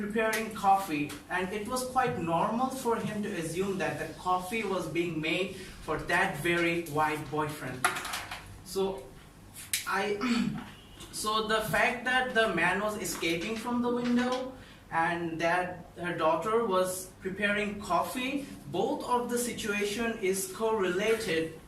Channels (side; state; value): both; identical; correlation 1.00